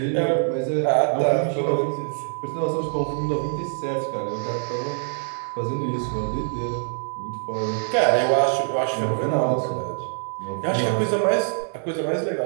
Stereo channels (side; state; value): left; silent; 62 dB below the other